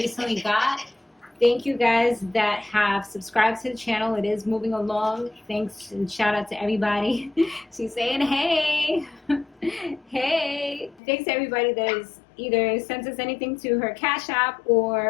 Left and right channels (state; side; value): drops out; right; at 11.0 s